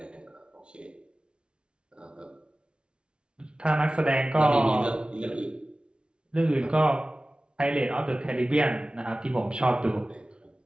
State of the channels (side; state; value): left; late; 0.056 ms